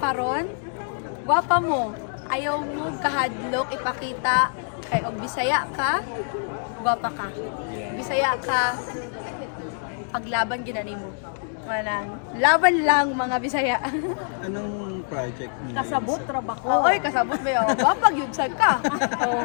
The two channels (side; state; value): right; silent; 61 dB below the other